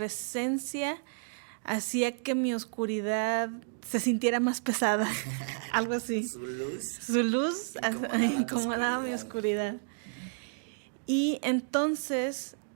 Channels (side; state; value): left; silent; digital silence